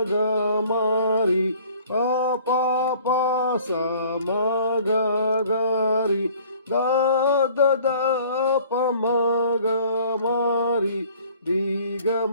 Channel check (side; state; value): both; inverted; correlation -0.53